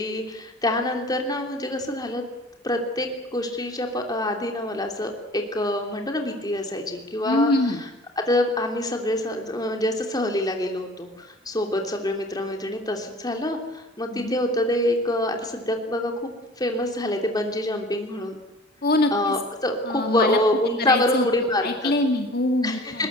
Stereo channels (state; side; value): normal; both; correlation 0.45